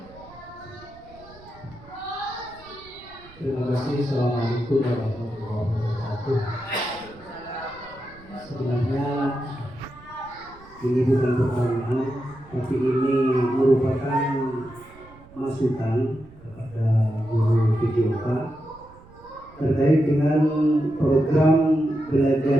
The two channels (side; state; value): right; noise; rumble, 23 dB below the sound